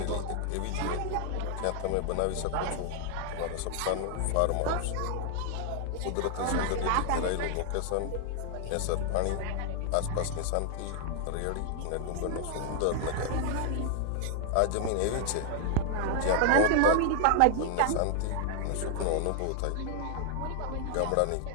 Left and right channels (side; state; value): both; different; correlation 0.00